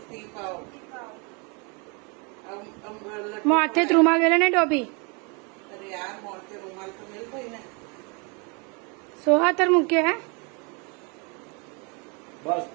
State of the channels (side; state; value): left; quieter; 32.5 dB